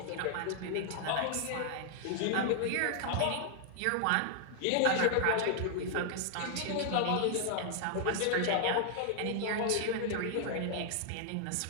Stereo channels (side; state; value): both; different; correlation -0.01